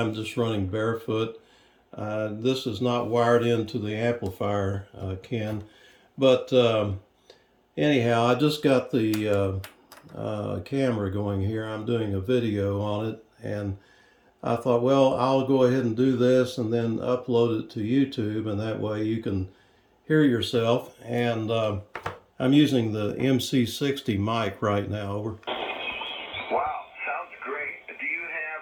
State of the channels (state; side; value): identical; both; correlation 1.00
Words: just running barefoot. This is not wired into the amplifier, Ken. But anyhow, I just got the camera going here. I'm doing a video on it, and I thought, well, I'll go ahead and do this and then upload it to YouTube, and that way you can hear yourself. And I'm using the MC60 mic right now. Over. Wow, sounds great. Do you have